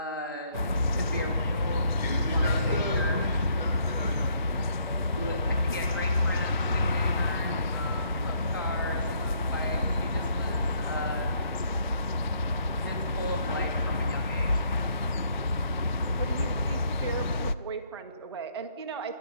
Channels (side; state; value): both; inverted; correlation -0.68